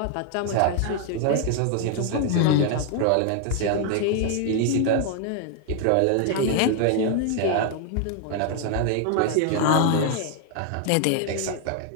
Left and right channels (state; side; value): different; both; correlation 0.00